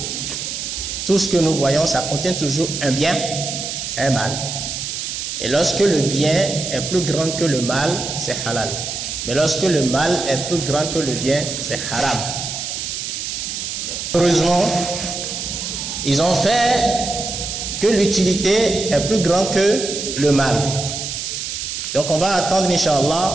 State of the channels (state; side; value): noise; right; hiss, 5 dB below the sound